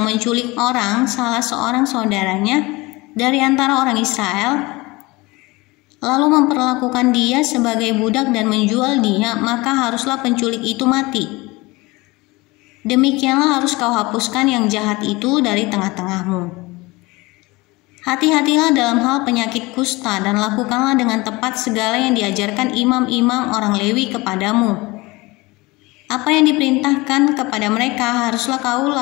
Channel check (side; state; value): right; quieter; 22.8 dB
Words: menculik salah seorang saudaranya dari antara orang Israel, lalu memperlakukan dia sebagai budak dan menjual dia, maka haruslah penculik itu mati. Demikianlah harus kau hapuskan yang jahat itu dari tengah-tengahmu. Hati-hatilah dalam hal penyakit kusta, dan lakukanlah dengan tepat segala yang diajarkan imam-imam orang Lewi kepadamu. Apa yang diperintahkan kepada mereka haruslah